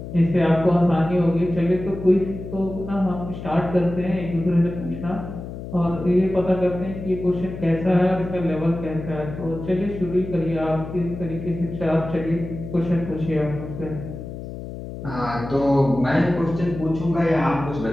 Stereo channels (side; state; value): left; noise; hum, 10 dB below the sound